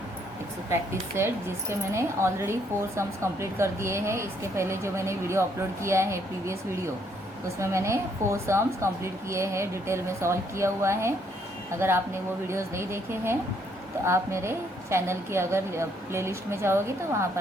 प्रैक्टिस सेट, जिसके मैंने ऑलरेडी 4 सम्स कंप्लीट कर दिए हैं। इसके पहले जो मैंने वीडियो अपलोड किया है, प्रीवियस वीडियो, उसमें मैंने 4 सम्स कंप्लीट किए हैं, डिटेल में सॉल्व किया हुआ है। अगर आपने वो वीडियोज़ नहीं देखे हैं तो आप मेरे चैनल की अगर प्लेलिस्ट में जाओगे तो वहाँ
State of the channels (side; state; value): both; normal; correlation 0.69